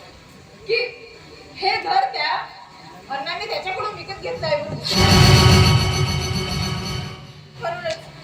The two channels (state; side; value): identical; both; correlation 1.00